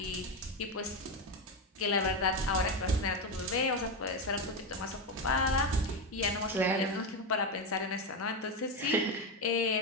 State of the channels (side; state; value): both; normal; correlation 0.12